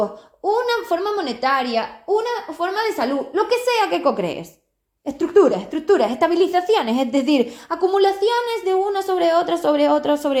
una forma monetaria, una forma de salud, lo que sea que co-crees. Estructuras, estabilizaciones, es decir, acumulaciones de una sobre otra, sobre otra,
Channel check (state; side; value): identical; both; correlation 1.00